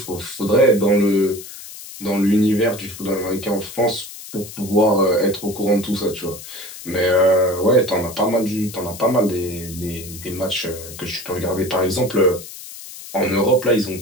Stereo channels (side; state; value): left; noise; hiss, 14 dB below the sound